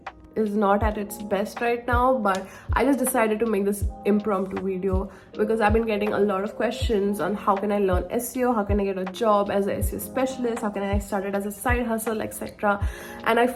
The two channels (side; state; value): both; identical; correlation 1.00